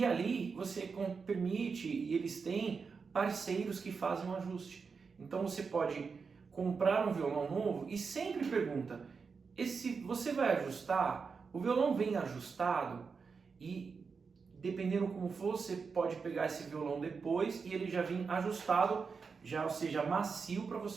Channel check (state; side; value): quieter; left; 5.2 dB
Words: ali você permite, e eles têm parceiros que fazem um ajuste. Então você pode comprar um violão novo e sempre pergunta, você vai ajustar? O violão vem ajustado? E dependendo como for, você pode pegar esse violão depois e ele já vem ajustado, ou seja, macio para